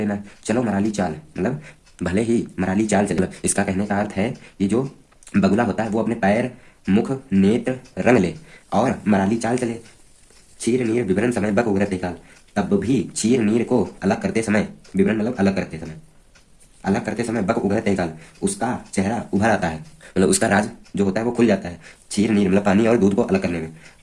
चलो मराली चाल मतलब भले ही मराली चाल चले। इसका कहने का अर्थ है कि जो बगुला होता है वो अपने पैर मुख नेत्र रंग ले और मराली चाल चले। चीर नीर विवरण समय बक उगरत निकाल, तब भी चीर नीर को अलग करते समय, विवरण मतलब अलग करते समय, अलग करते समय बक उगरत निकाल उसका चेहरा उभर आता है, मतलब उसका राज जो होता है वो खुल जाता है। चीर नीर मतलब पानी और दूध को अलग करने में,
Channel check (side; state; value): both; identical; correlation 1.00